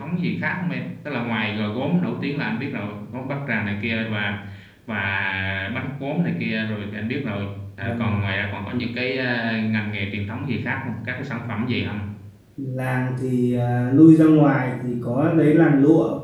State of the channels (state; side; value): identical; both; correlation 1.00